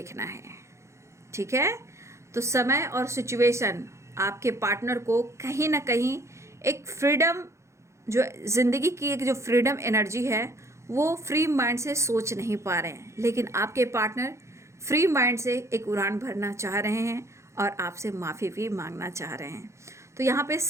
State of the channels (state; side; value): late; left; 0.14 ms